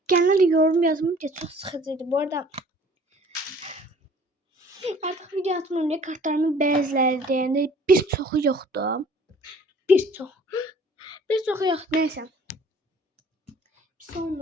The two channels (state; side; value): normal; both; correlation 0.52